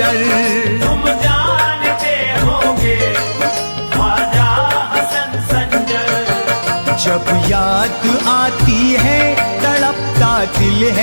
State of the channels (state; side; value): inverted; both; correlation -1.00